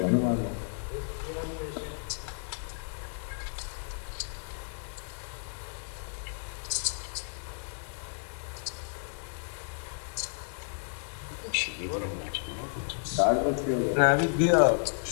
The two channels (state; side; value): silent; right; 56 dB below the other